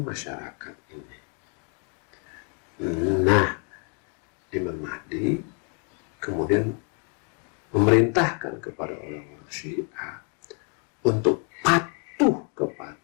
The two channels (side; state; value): right; quieter; 39.7 dB